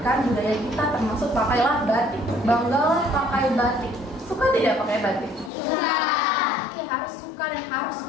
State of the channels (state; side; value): drops out; right; at 5.5 s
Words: budaya kita, termasuk pakailah batik. Banggalah pakai batik. Suka tidak pakai batik? Suka. Ya, harus suka dan harus